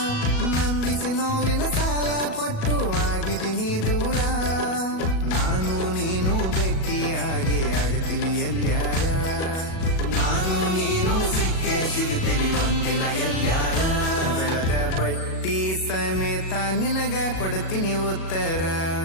ನಂಬಿಸಿ ನೋವಿನ ಸಾಲ ಕೊಟ್ಟು ಆಗಿದ್ದೀನಿ ದೂರ. ನಾನು ನೀನು ಬೆಕ್ಕಿಯಾಗೆ ಆಗ್ತೀವಿ ಎಲ್ಲ್ಯಾರ, ನಾನು ನೀನು ಸಿಗ್ತೀವಿ ಒಂದಿನ ಎಲ್ಲ್ಯಾರ. ಬೆಳೆದ ಬಡ್ಡಿ ಸಮೇತ ನಿನಗ ಕೊಡ್ತೀನಿ ಉತ್ತರ,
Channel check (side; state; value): right; late; 37 ms